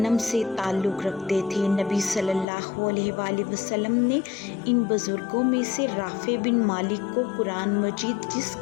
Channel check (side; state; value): right; drops out; at 2.5 s